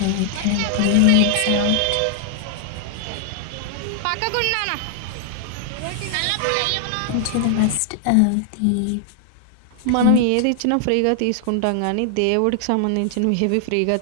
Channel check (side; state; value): both; different; correlation 0.00